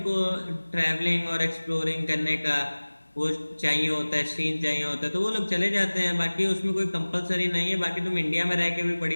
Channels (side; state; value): both; inverted; correlation -1.00